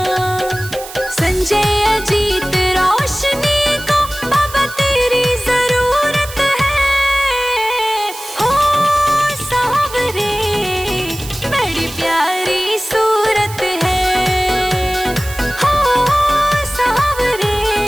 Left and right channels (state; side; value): noise; right; hiss, 14 dB below the sound